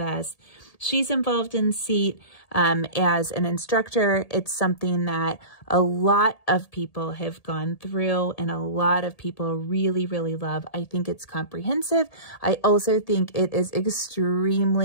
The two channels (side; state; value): right; late; 1.8 ms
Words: us. She's involved in SEAT as an instructor. It's something that a lot of people have gone through and a lot of people really, really love. I think it's comprehensive. I also think it is